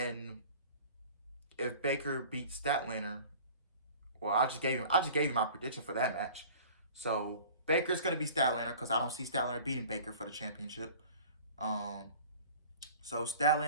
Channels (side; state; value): both; inverted; correlation -0.44